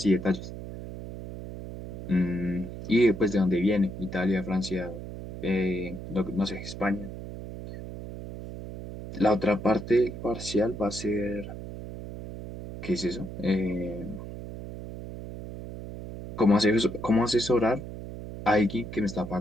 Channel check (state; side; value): noise; right; hum, 10 dB below the sound